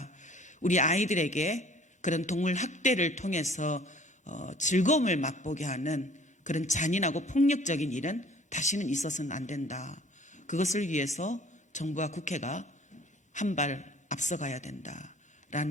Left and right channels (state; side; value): normal; both; correlation 0.52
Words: 우리 아이들에게 그런 동물 학대를 통해서 즐거움을 맛보게 하는 그런 잔인하고 폭력적인 일은 다시는 있어서는 안 된다. 그것을 위해서 정부와 국회가 한 발 앞서가야